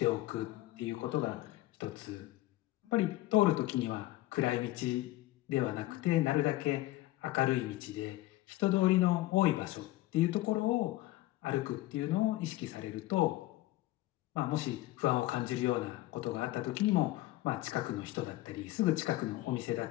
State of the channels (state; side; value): quieter; right; 17.2 dB